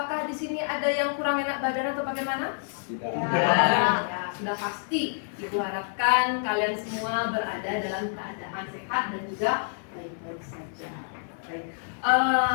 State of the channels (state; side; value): silent; right; digital silence